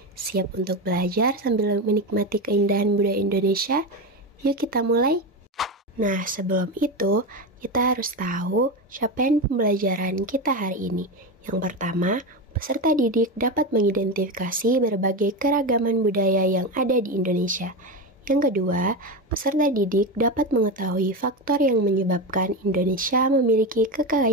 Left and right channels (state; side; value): normal; both; correlation 0.17